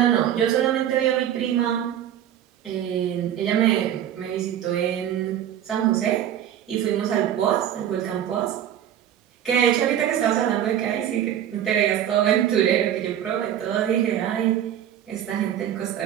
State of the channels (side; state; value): left; quieter; 10.6 dB